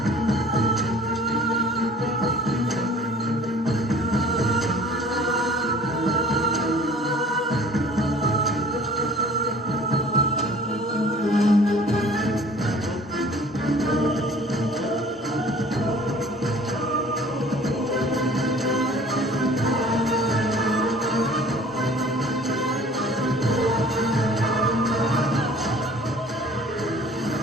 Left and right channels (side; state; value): both; normal; correlation 0.50